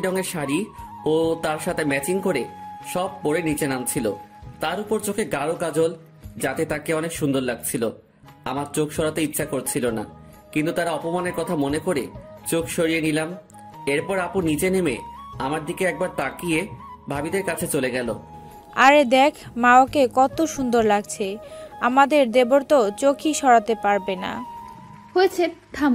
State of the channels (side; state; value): both; identical; correlation 1.00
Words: রঙের শাড়ি ও তার সাথে ম্যাচিং করে সব পরে নিচে নামছিল। তার উপর চোখে গাঢ় কাজল, যাতে তাকে অনেক সুন্দর লাগছিল। আমার চোখ সরাতে ইচ্ছা করছিল না, কিন্তু তারা অপমানের কথা মনে করে চোখ সরিয়ে নিলাম। এরপর আপু নিচে নেমে আমার দিকে একবার তাকিয়ে ভাবিদের কাছে চলে গেল। আরে দেখ মা, ওকে কত সুন্দর লাগছে। আমাদের দেবর তো চোখই সরাতে পারবে না। হয়েছে,